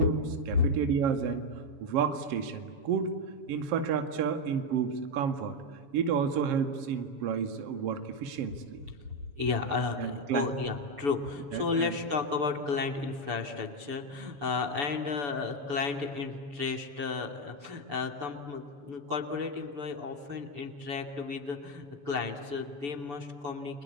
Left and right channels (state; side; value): late; left; 6.9 ms